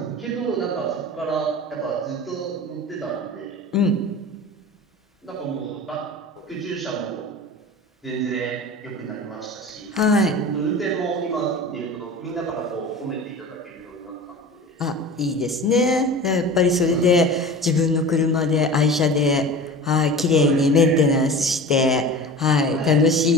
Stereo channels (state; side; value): normal; both; correlation 0.35